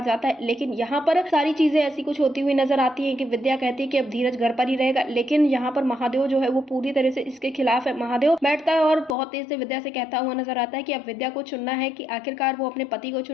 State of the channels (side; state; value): right; drops out; at 9.2 s